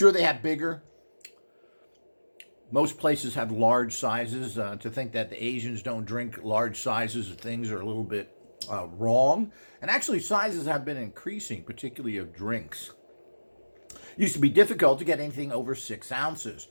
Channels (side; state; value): both; inverted; correlation -1.00